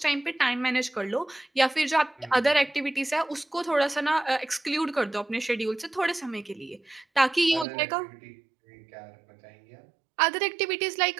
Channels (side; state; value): left; drops out; at 7.7 s